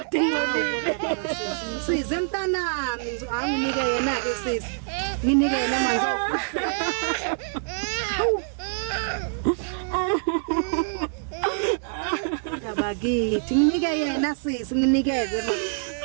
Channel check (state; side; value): silent; left; digital silence